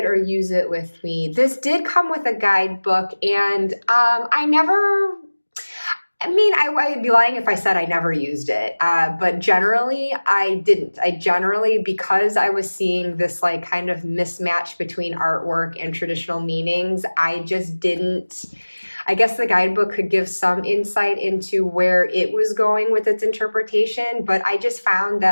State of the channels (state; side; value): inverted; both; correlation -1.00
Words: or use it with me? This did come with a guidebook, and I'd be lying if I said I never used it. But generally, I didn't. Because I was seeing this like kind of mismatch between artwork and traditional meanings, I just didn't. I guess the guidebook could give some insight into where it was going with its interpretation, but I just found